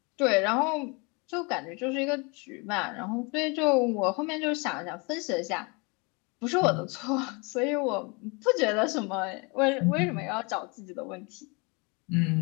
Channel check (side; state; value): right; quieter; 29.9 dB